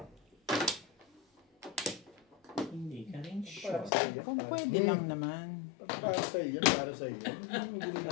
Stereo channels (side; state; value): right; drops out; at 3.9 s